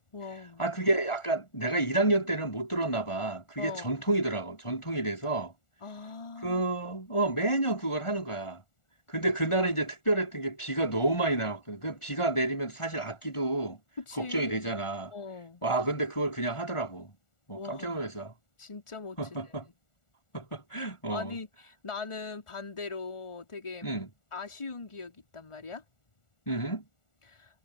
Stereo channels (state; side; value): late; right; 1.4 ms